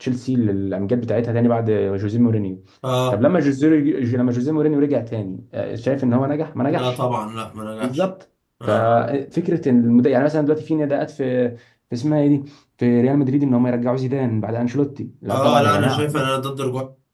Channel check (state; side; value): identical; both; correlation 1.00